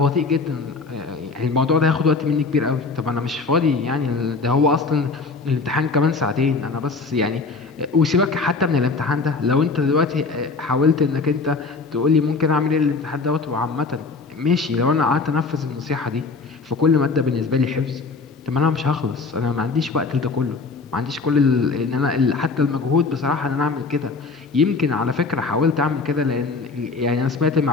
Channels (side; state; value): right; quieter; 4.2 dB